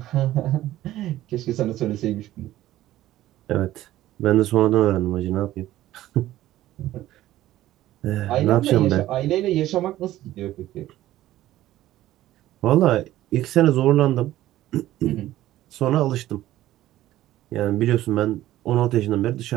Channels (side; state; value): left; quieter; 14.6 dB